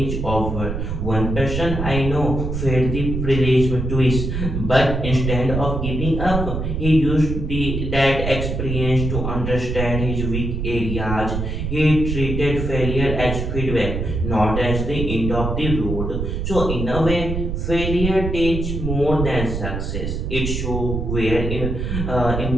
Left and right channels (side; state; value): right; noise; rumble, 3 dB below the sound